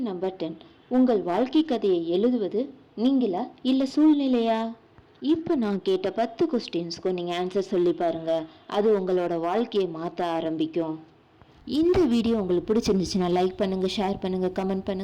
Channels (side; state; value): both; identical; correlation 1.00